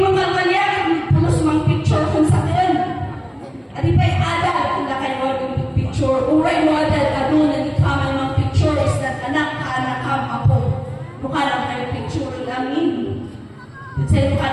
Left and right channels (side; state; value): both; identical; correlation 1.00